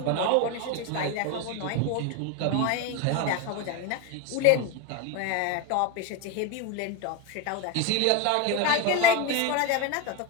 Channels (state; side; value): different; both; correlation 0.03